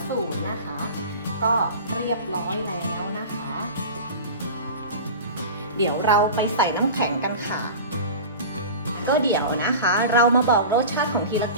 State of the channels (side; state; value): both; inverted; correlation -0.33